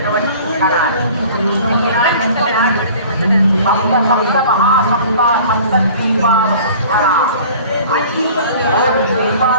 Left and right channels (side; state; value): both; inverted; correlation -0.46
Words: క్షణాలు. సప్త సప్త మహాసప్త సప్త ద్వీపాల అన్ని